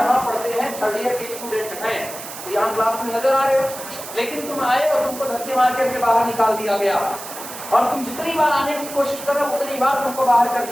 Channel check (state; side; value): noise; right; hiss, 11 dB below the sound